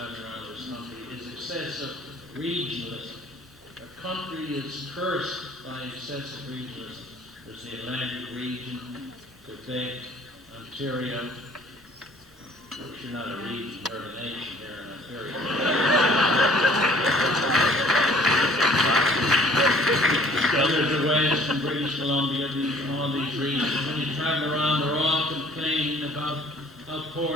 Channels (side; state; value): both; normal; correlation 0.54